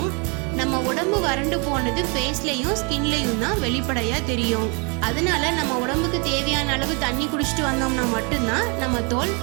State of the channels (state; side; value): quieter; left; 33.1 dB